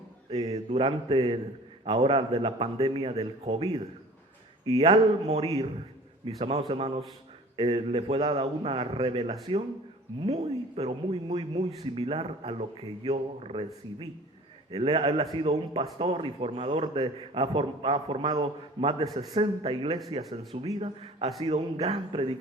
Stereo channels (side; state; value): both; normal; correlation 0.45